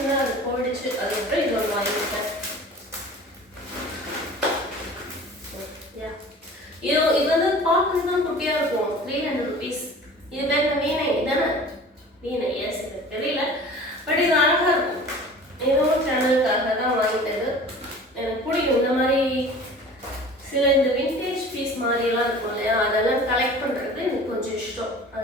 அது போயிடுச்சு. அதுக்கப்புறம் இது ஒன்று வாங்கியிருக்கேன். இது வந்து பார்க்கறது தான் குட்டியாக இருக்கும். 300 rupees. இது பேர் வீணை தானே? வீணை, எஸ், எனக்கு தெரியல. பட் இது அழகாக இருக்கும். இதுவும் சேனலுக்காக தான் வாங்கிட்டது. எனக்கு பிடிக்கும் இந்த மாதிரி சில இந்த விண்டேஜ் பீஸ் மாதிரிலாம் இருக்கும் இல்லையா, அதெல்லாம் கலெக்ட் பண்ணுறது எனக்கு கொஞ்சம் இஷ்டம்.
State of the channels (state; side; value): normal; both; correlation 0.42